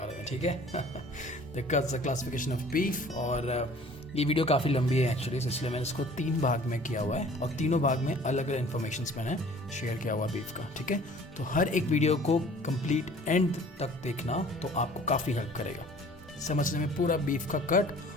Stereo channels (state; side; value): normal; both; correlation 0.50